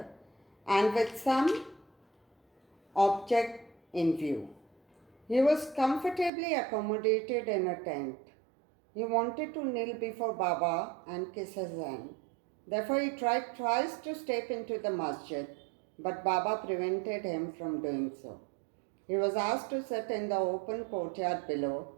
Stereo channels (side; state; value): left; drops out; at 6.3 s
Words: and with some object in view. He was comfortably accommodated in a tent. He wanted to kneel before Baba and kiss his hand. Therefore, he tried twice to step into the masjid, but Baba prevented him from doing so. He was asked to sit in the open courtyard below